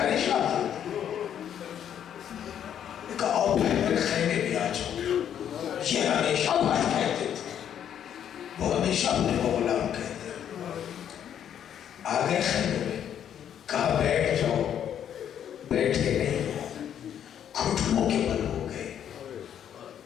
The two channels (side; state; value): right; quieter; 9.5 dB